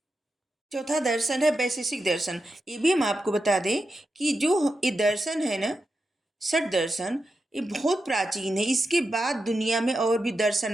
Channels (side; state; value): both; normal; correlation 0.88